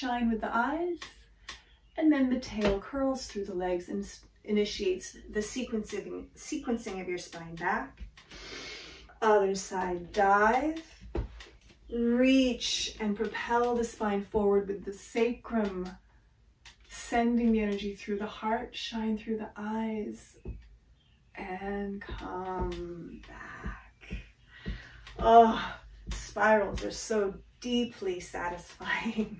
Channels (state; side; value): identical; both; correlation 1.00